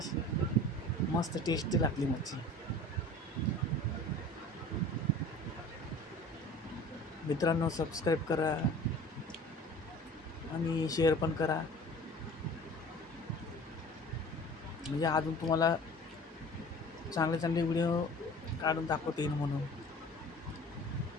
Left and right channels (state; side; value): normal; both; correlation 0.43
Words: मस्त टेस्टी लागली मच्छी. मित्रांनो, सबस्क्राईब करा आणि शेअर पण करा, म्हणजे अजून तुम्हाला चांगले चांगले व्हिडिओ काढून दाखवता येईल म्हणून.